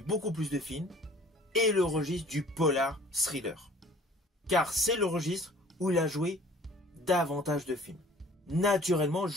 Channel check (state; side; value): normal; both; correlation 0.50